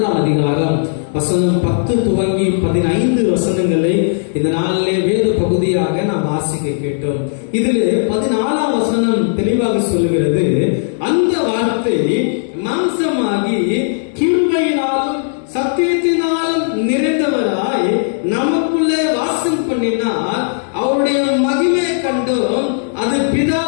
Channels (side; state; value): right; silent; digital silence